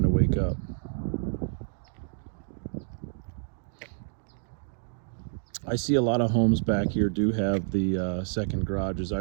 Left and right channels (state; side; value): silent; left; digital silence